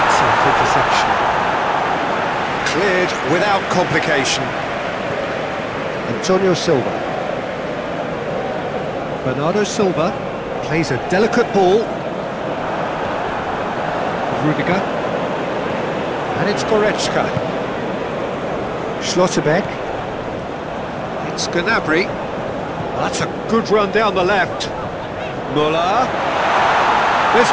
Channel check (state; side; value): identical; both; correlation 1.00